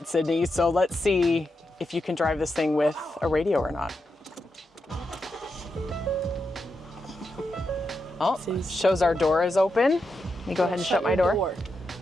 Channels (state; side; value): normal; both; correlation 0.86